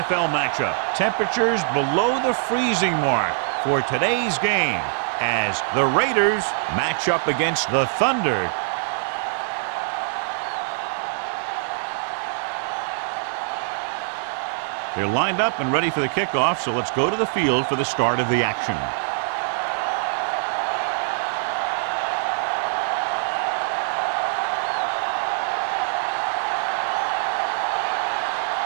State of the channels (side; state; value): left; silent; 63 dB below the other